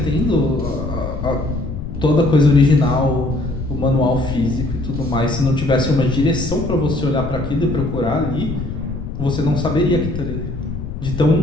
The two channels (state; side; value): noise; left; rumble, 7 dB below the sound